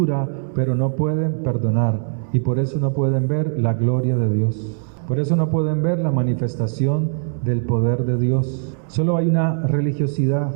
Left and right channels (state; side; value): silent; left; 64 dB below the other